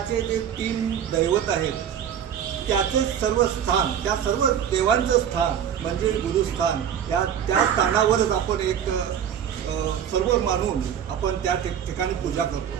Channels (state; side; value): quieter; left; 8.9 dB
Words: जे तीन दैवत आहेत त्याचं सर्व स्थान, त्या सर्व देवांचं स्थान म्हणजे गुरुस्थान. त्या स्थानावरच आपण एक सर्व मानून आपण त्या ठिकाणी पूजा